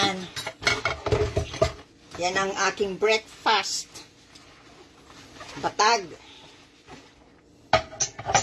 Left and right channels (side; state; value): both; identical; correlation 1.00